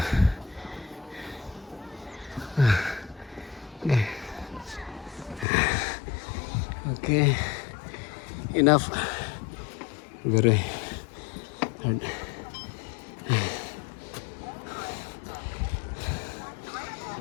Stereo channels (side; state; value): right; drops out; at 5.5 s